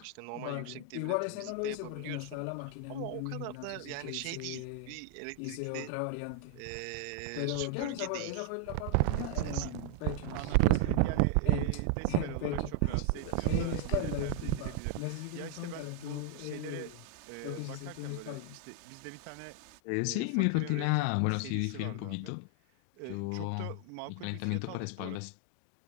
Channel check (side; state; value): both; different; correlation 0.00